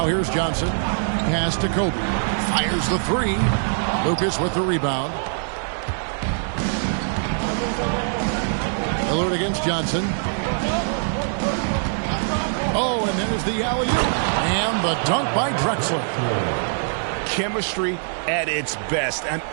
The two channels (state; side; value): silent; left; 61 dB below the other